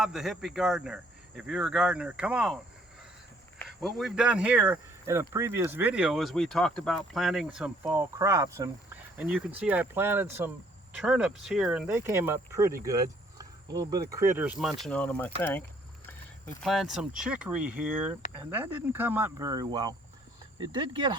the Hippie Gardener. If you're a gardener, come on. What we've done here in a previous video is we talked about planting some fall crops, and you can see I planted some turnips here and they came up pretty good. A little bit of critters munching on them, I think. We planted some chicory here and that didn't come up very well. It did get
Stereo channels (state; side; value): normal; both; correlation 0.63